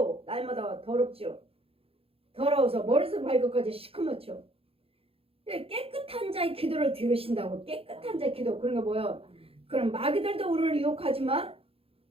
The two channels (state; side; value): late; left; 0.27 ms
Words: 날마다 더럽죠. 더러워서 머리에서 발끝까지 시커멓죠. 깨끗한 자의 기도를 들으신다고. 깨끗한 자의 기도. 그런 거 뭐예요? 그럼 마귀들도 우리를 유혹하지만